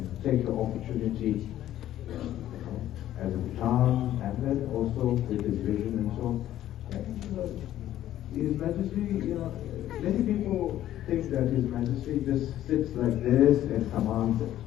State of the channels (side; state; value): right; quieter; 12.7 dB